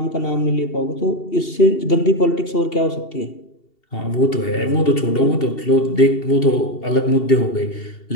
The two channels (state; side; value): late; right; 2.7 ms